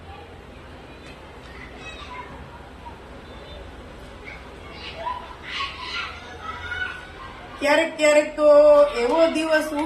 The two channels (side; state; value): both; identical; correlation 1.00